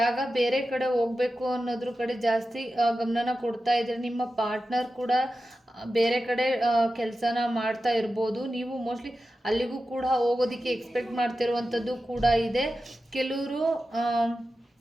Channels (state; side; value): normal; both; correlation 0.92